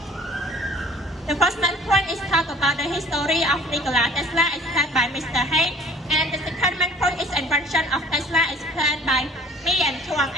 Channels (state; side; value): normal; both; correlation 0.52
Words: first main point is talk about the history of Nikola Tesla, explained by Mr. Hain. And the second main point is invention of Tesla, explained by me and Chuang.